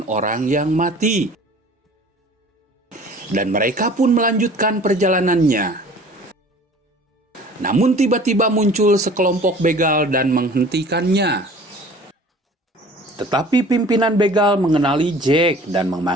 orang yang mati. Dan mereka pun melanjutkan perjalanannya. Namun tiba-tiba muncul sekelompok begal dan menghentikannya. Tetapi pimpinan begal mengenali Jack dan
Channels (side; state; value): both; normal; correlation 0.47